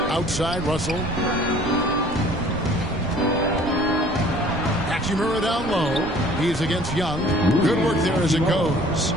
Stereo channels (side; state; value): right; noise; rumble, 11 dB below the sound